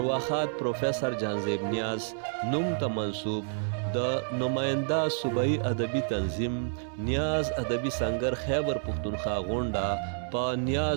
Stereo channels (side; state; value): left; silent; 58 dB below the other